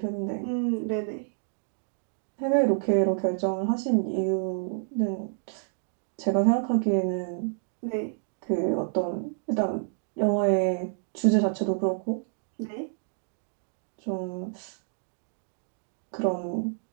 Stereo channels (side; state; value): left; silent; digital silence